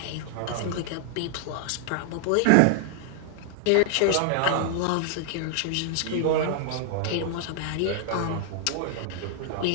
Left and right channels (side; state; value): both; different; correlation -0.01